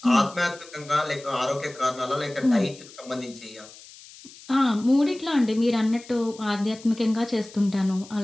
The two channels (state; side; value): noise; left; hiss, 20 dB below the sound